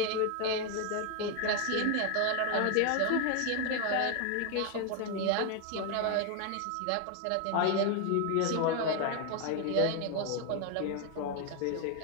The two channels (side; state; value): both; different; correlation 0.01